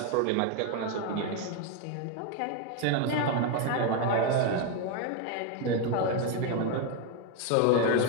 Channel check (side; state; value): both; different; correlation 0.02